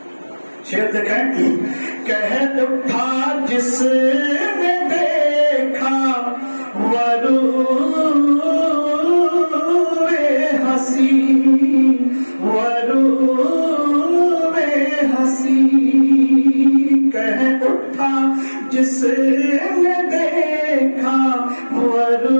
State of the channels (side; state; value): both; inverted; correlation -1.00